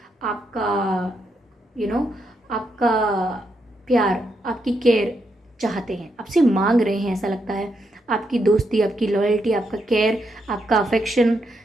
आपका आपका प्यार, आपकी केयर चाहते हैं, आपसे मांग रहे हैं, ऐसा लगता है। आपकी दोस्ती, आपकी लॉयल्टी, आपका केयर, आपका अफेक्शन,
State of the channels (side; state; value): both; normal; correlation 0.80